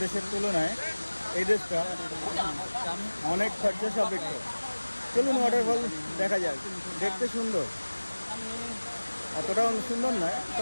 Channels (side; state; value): both; inverted; correlation -1.00